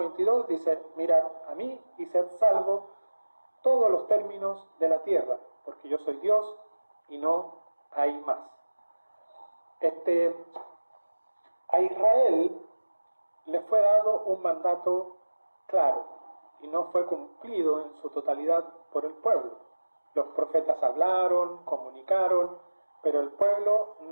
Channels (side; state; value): both; inverted; correlation -1.00